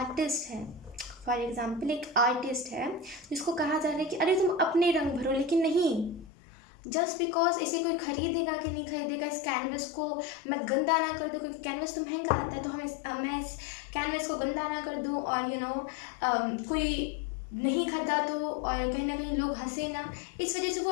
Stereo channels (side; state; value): right; drops out; at 6.3 s